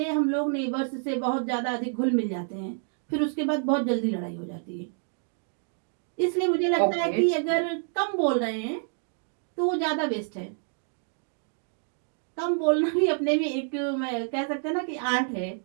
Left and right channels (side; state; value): left; silent; 59 dB below the other